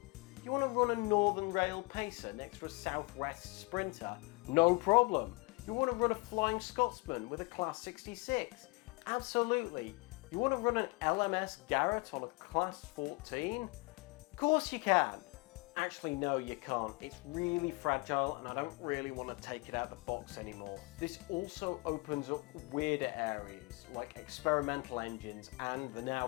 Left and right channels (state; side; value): quieter; right; 27.1 dB